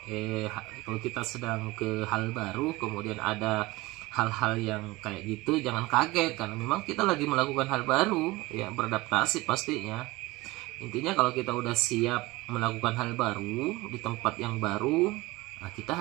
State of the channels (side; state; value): left; quieter; 20.6 dB